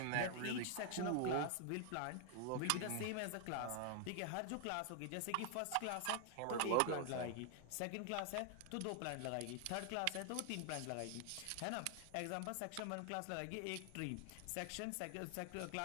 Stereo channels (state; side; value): different; both; correlation 0.00